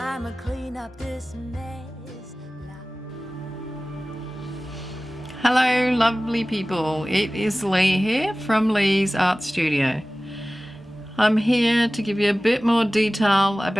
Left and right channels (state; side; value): normal; both; correlation 0.97